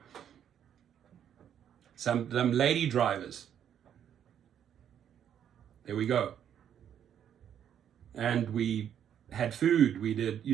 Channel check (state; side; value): quieter; left; 9.4 dB